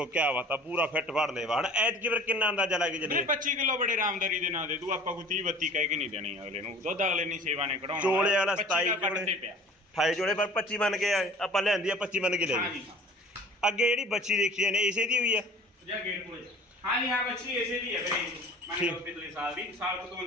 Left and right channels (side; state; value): both; normal; correlation 0.46